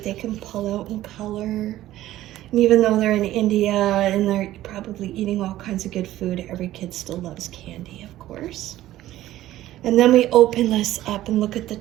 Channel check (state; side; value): quieter; left; 14.5 dB